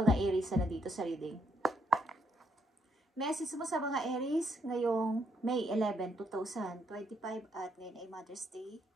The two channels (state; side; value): normal; both; correlation 0.74